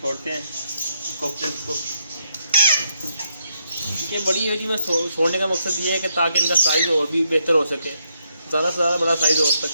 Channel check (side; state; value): both; inverted; correlation -0.78